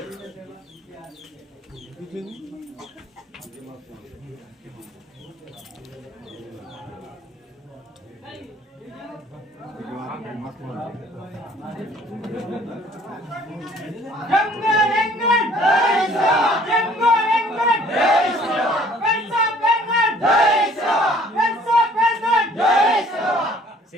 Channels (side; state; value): both; normal; correlation 0.56